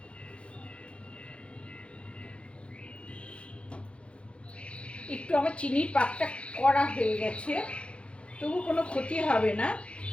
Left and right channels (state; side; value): late; right; 0.060 ms